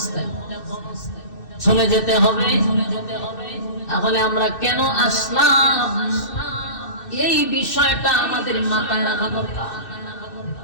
চলে যেতে হবে। তাহলে আমরা কেন আসলাম, এই বিষয়টা আমাদের মাথায় রাখা দরকার।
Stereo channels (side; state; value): right; late; 2.6 ms